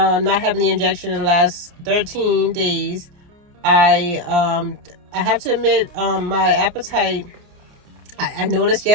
having the injection in the last 13 days, I have to admit, my appetite, I noticed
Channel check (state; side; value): late; left; 29 ms